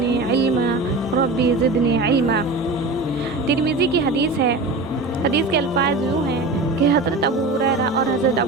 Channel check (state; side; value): quieter; left; 3.3 dB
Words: علما ربی زدنی علما۔ ترمذی کی حدیث ہے۔ حدیث کے الفاظ یوں ہیں کہ حضرت ابو ہریرہ اور حضرت